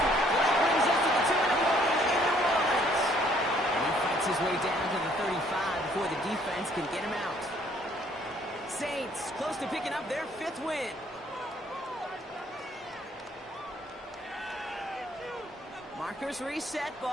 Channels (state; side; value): normal; both; correlation 0.63